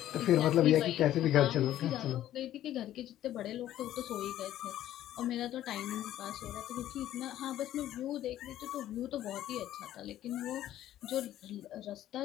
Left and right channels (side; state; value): right; quieter; 12.8 dB